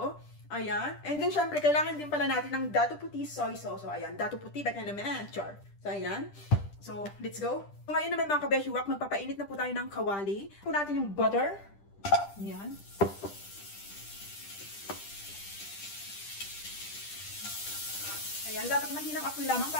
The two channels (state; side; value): late; right; 10 ms